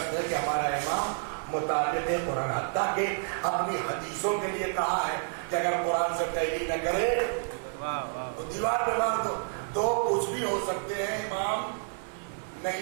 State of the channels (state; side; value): silent; left; 58 dB below the other